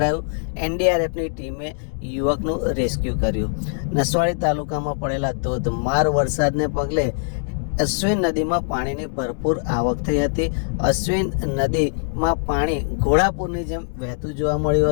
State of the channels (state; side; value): silent; right; digital silence